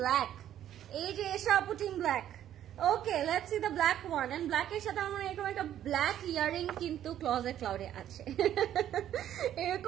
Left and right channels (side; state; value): left; quieter; 11.2 dB